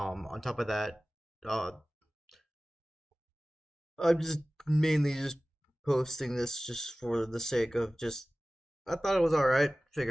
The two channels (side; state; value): both; normal; correlation 0.98